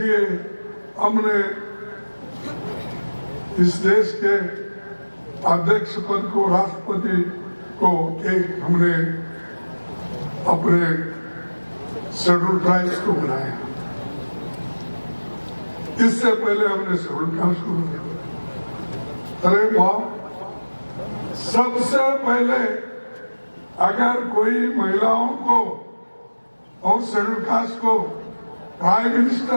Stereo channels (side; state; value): both; inverted; correlation -1.00